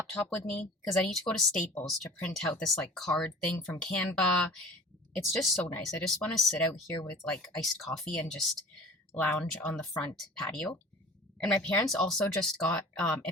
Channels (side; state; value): both; normal; correlation 0.42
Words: with me because I need to go to Staples to print out this like card thing from Canva. It's just so nice. I just want to sit out here with like iced coffee and just lounge on the front patio. And my parents also just got